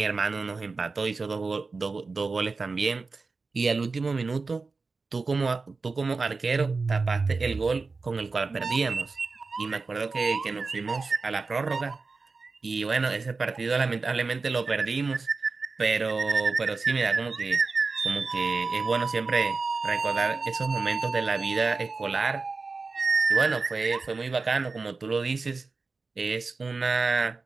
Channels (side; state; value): left; quieter; 4.1 dB